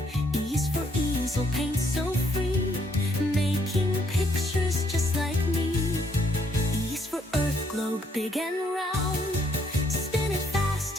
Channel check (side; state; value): both; normal; correlation 0.70